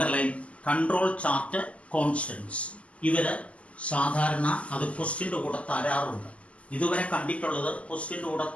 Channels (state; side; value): late; right; 0.064 ms